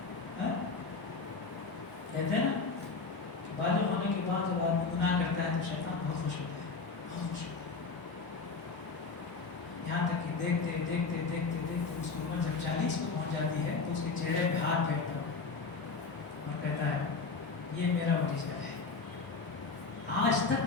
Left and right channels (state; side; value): quieter; right; 4.4 dB